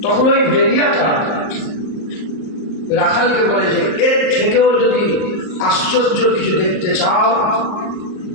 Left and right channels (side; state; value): right; late; 38 ms